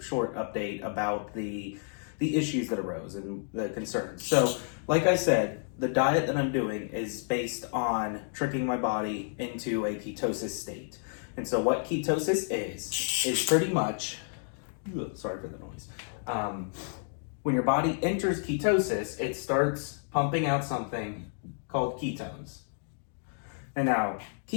update about the issues that arose and the concerns. So, like I said, the diet that I'm doing is based on tricking my body into a ketosis state. And so what ketosis is pretty much, sorry for the noise. When your body enters ketosis, it starts pumping out something called ketones. And now,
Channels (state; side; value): silent; right; 57 dB below the other